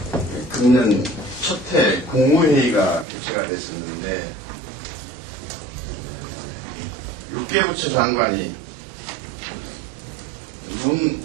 금년 첫해 국무회의가 개최가 됐었는데 6개 부처 장관이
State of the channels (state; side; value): drops out; left; at 3.1 s